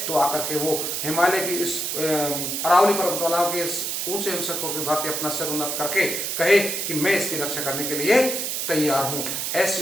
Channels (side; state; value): right; noise; hiss, 2 dB below the sound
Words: तो आकर के वो हिमालय की इस अरावली पर्वतमालाओं के इस ऊंचे हिमशकों की भांति अपना सिर उन्नत करके कहे कि मैं इसकी रक्षा करने के लिए तैयार हूं।